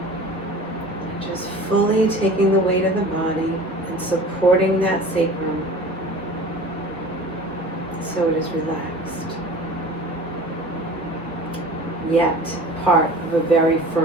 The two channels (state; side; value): normal; both; correlation 0.40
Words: just fully taking the weight of the body and supporting that sacrum so it is relaxed, yet part of a very